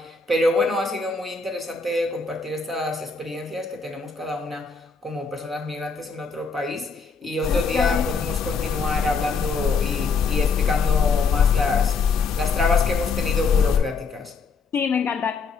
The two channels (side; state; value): right; quieter; 4.8 dB